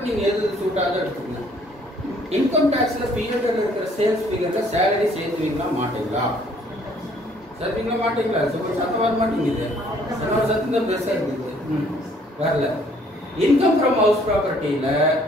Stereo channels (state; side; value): normal; both; correlation 0.61